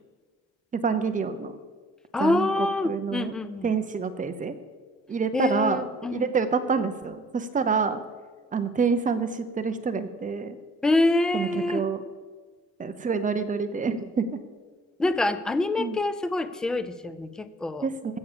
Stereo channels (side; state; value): both; normal; correlation 0.58